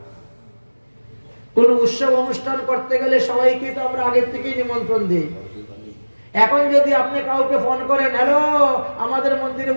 কোন উৎসব অনুষ্ঠান করতে গেলে সবাইকে তো আমরা আগের থেকেই নিমন্ত্রণ দিই। এখন যদি আপনি কাউকে ফোন করেন, হ্যালো আমাদের মন্দিরে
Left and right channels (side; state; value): both; inverted; correlation -1.00